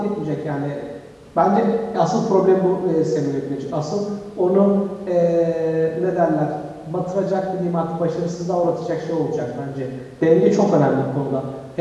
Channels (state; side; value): identical; both; correlation 1.00